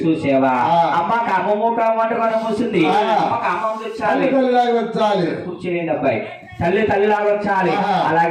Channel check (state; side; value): identical; both; correlation 1.00